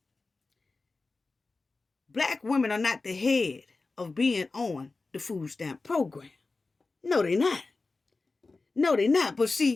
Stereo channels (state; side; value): quieter; right; 3.7 dB